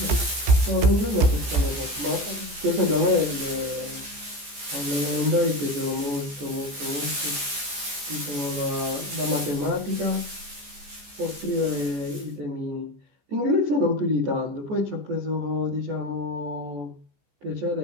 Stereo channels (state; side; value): late; left; 14 ms